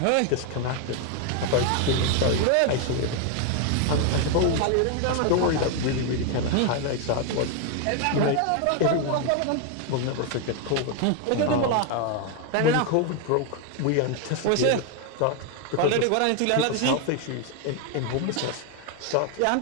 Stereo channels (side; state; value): both; different; correlation 0.01